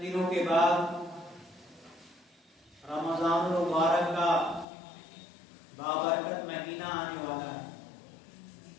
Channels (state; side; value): drops out; right; at 4.7 s